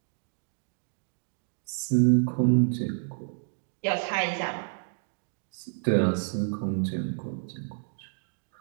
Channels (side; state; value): left; silent; digital silence